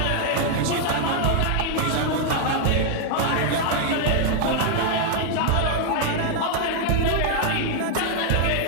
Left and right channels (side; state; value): both; different; correlation 0.00